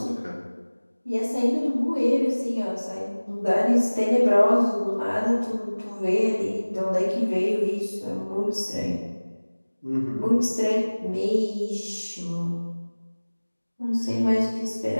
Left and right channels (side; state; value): both; inverted; correlation -1.00